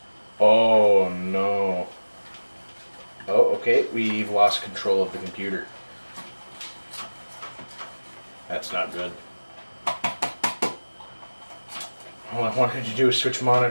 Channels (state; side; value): inverted; both; correlation -1.00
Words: Oh no. Oh, okay, we've lost control of the computer. That's not good. All I wanted to do is switch